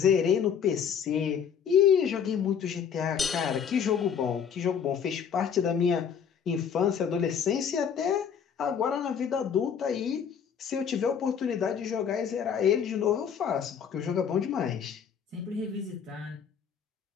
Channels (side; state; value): right; quieter; 7.5 dB